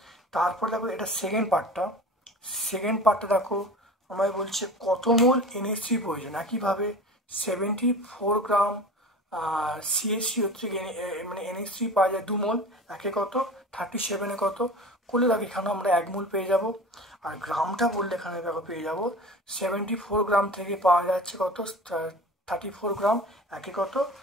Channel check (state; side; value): normal; both; correlation 0.37